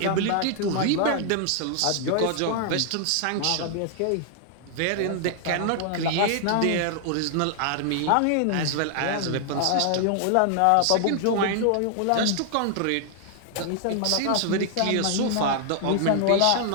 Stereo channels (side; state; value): both; different; correlation 0.00